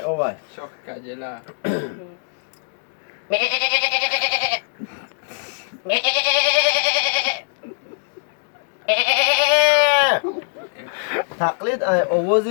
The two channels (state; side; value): silent; right; digital silence